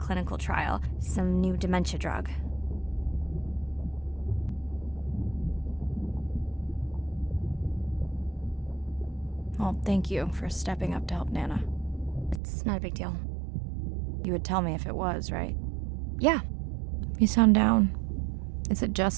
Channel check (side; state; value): left; drops out; at 12.4 s